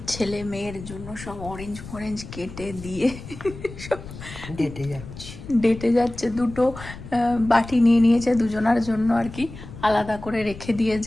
ছেলে মেয়ের জন্য সব অরেঞ্জ ফরেঞ্জ কেটে দিয়ে সব ডেটে যাচ্ছে। দুটো বাটি নিয়ে নিয়েছে দুজনার জন্য আর কি, আলাদা করে রেখে দিয়ে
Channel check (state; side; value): noise; left; rumble, 13 dB below the sound